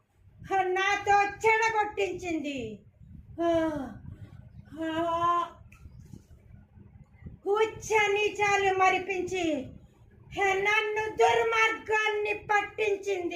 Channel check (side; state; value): both; identical; correlation 1.00